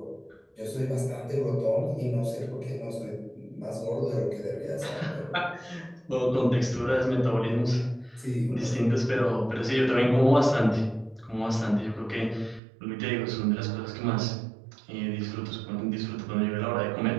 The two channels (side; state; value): left; drops out; at 12.6 s